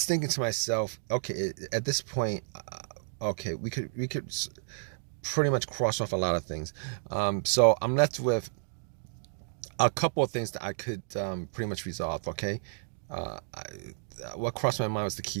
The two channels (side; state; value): left; silent; digital silence